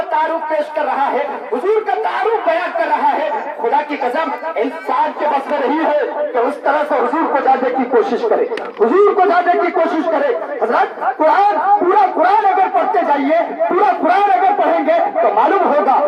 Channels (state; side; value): identical; both; correlation 1.00